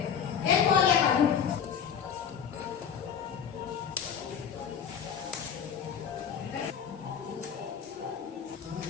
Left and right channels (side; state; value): right; quieter; 7.7 dB